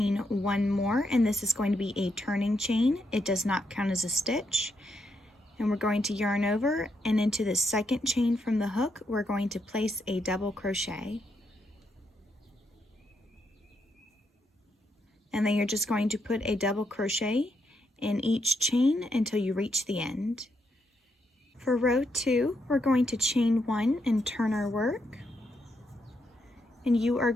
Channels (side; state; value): both; normal; correlation 0.80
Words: one more, and this is going to be a turning chain. It does not count as a stitch. And we're going to yarn over, and into the second chain from the hook, we're going to place a double crochet. And then you're just going to put a double crochet in each chain until you reach the end. For row 2, we're going to chain 1 and turn our work. And you are